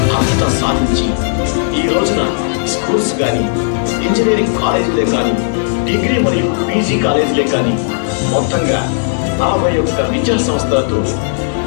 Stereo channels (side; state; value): right; silent; digital silence